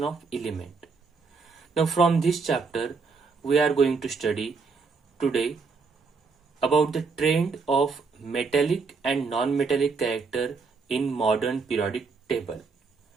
of element. Now from this chapter we are going to study today about the trend of metallic and non-metallic character in modern periodic table.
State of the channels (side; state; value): left; quieter; 4.7 dB